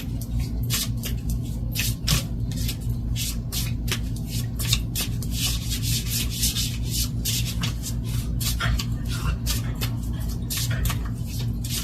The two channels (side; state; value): both; identical; correlation 1.00